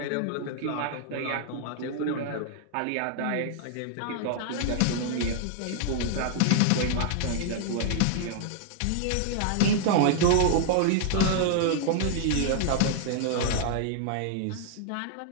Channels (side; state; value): both; different; correlation -0.01